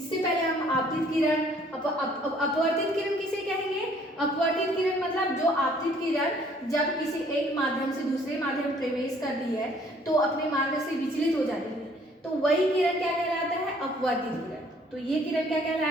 पहले हम आपतित किरण, अपवर्तित किरण किसे कहेंगे? अपवर्तित किरण मतलब जो आपतित किरण जब किसी एक माध्यम से दूसरे माध्यम में प्रवेश करती है तो अपने मार्ग से विचलित हो जाती है, तो वही किरण क्या कहलाता है? अपवर्तित किरण। तो ये किरण क्या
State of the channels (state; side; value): normal; both; correlation 0.59